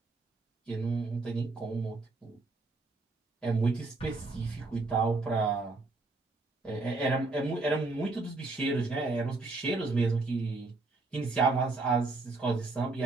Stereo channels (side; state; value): left; quieter; 3.5 dB